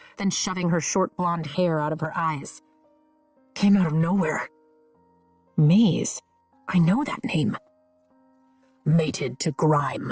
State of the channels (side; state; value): both; identical; correlation 1.00